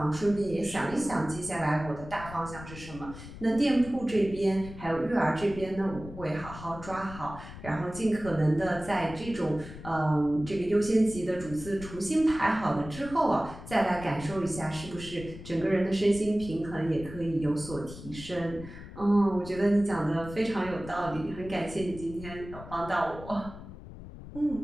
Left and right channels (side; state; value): left; noise; rumble, 14 dB below the sound